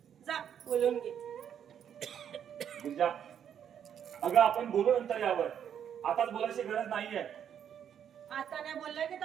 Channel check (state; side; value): quieter; left; 8.9 dB